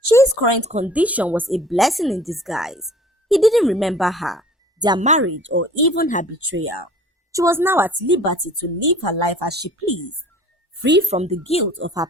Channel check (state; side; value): normal; both; correlation 0.48